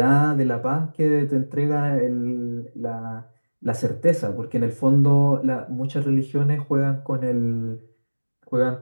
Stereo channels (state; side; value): inverted; both; correlation -1.00